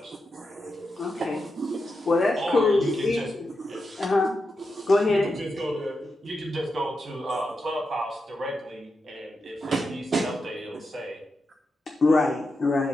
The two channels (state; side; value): normal; both; correlation 0.88